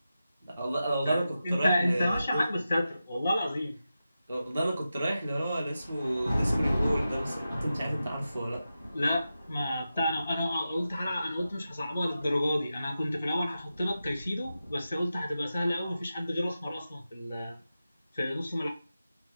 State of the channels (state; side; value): inverted; both; correlation -0.91